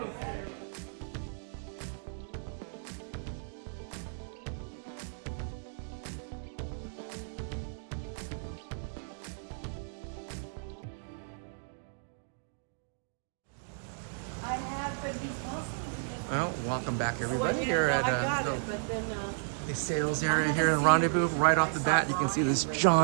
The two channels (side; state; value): left; silent; digital silence